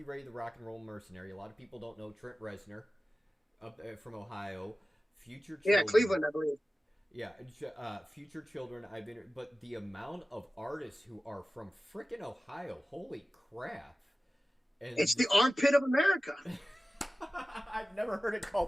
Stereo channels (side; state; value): both; normal; correlation 0.95